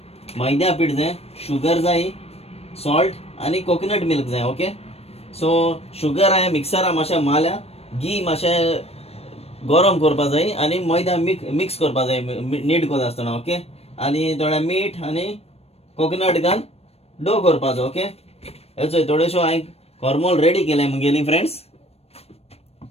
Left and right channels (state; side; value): late; right; 0.29 ms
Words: मैद्या पीठ जाय, शुगर जाय, सॉल्ट आनी कोकोनट मिल्क जाय. ओके, सो शुगर हांवें मिक्सरा मातशें मारल्या, घी मातशें गरम करपा जाय आनी मैदा मिक्स करपा जाय नीट कोता आसतना. ओके, आनी थोडें मीठ आनी कोकोनट घाल डो करपाचो. ओके, हेचो थोडेशो हांवें कोरमोल रेडी केले मुगेली फ्रेंड्स.